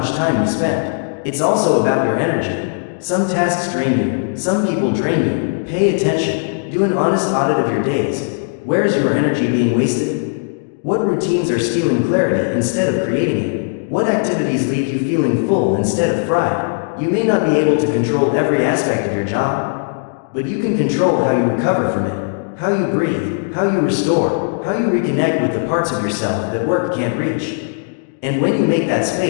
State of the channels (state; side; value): silent; right; digital silence